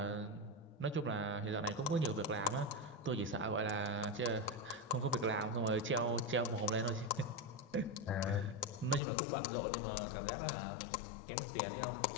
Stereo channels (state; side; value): drops out; right; at 9.0 s